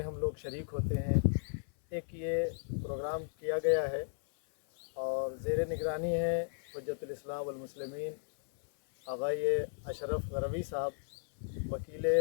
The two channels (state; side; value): silent; right; 54 dB below the other